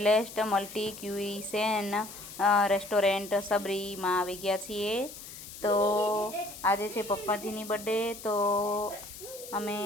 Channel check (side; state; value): left; noise; hiss, 14 dB below the sound